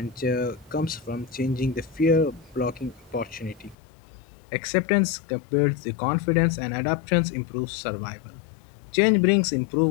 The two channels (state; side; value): drops out; right; at 3.8 s